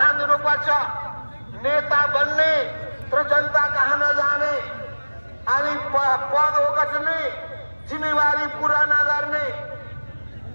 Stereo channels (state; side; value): inverted; both; correlation -1.00